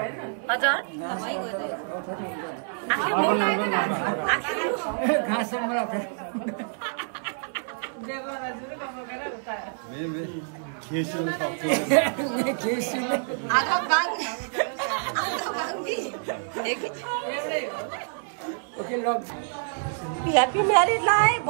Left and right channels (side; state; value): left; silent; 56 dB below the other